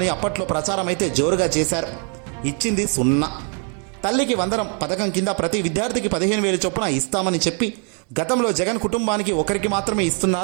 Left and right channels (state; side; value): quieter; left; 39.5 dB